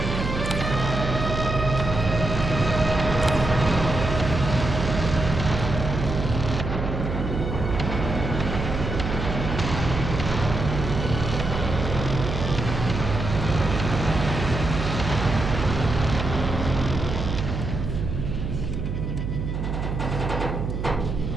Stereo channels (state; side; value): noise; right; hum, 3 dB below the sound